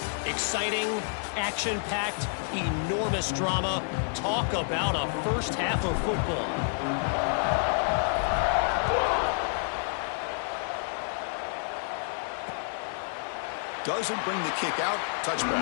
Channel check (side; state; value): right; silent; 59 dB below the other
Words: Exciting, action-packed, enormous drama. Talk about a first half of football. Doesn't bring the kick out.